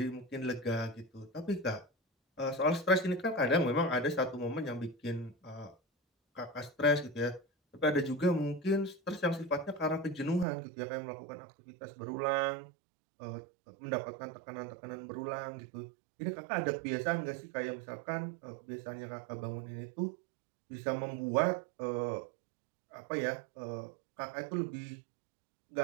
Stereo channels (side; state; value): left; drops out; at 10.5 s